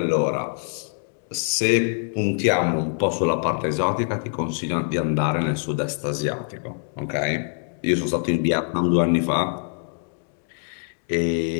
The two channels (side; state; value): right; silent; 57 dB below the other